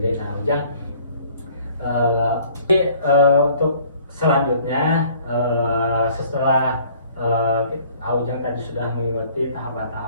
Nah Aujang, untuk selanjutnya, setelah Aujang tadi sudah mengikuti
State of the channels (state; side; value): inverted; both; correlation -0.56